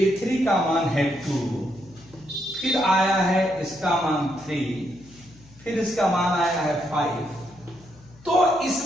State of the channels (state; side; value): noise; left; hum, 24 dB below the sound